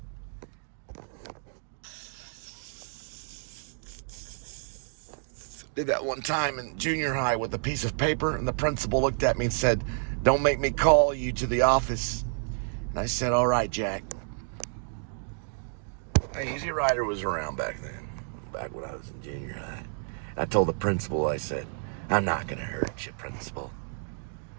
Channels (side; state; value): left; silent; 58 dB below the other